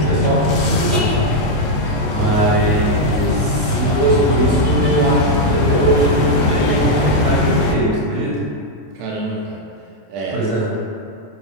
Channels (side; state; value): left; late; 28 ms